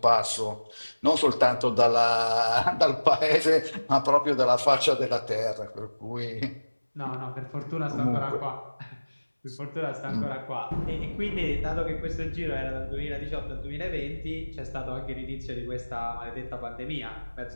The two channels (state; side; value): inverted; both; correlation -1.00